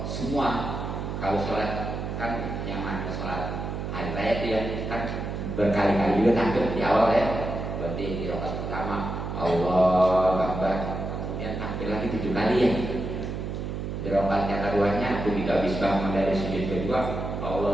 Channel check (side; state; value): right; noise; hum, 5 dB below the sound